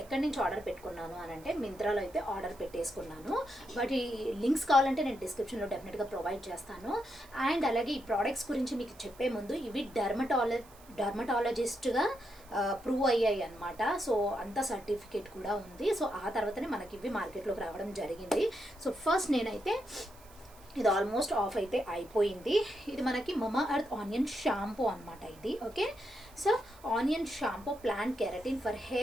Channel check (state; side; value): noise; right; hiss, 24 dB below the sound